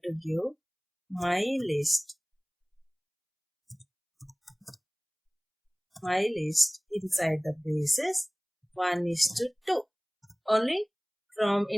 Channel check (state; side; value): identical; both; correlation 1.00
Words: to give my list inside the braces 1:2. Only from